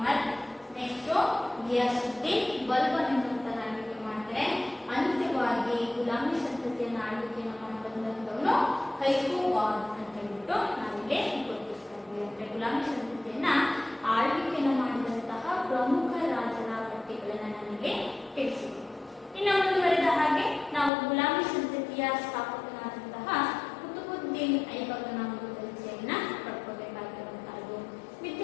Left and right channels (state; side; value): drops out; right; at 20.9 s